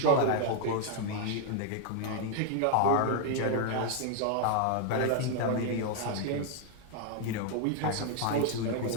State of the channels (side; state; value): both; different; correlation 0.00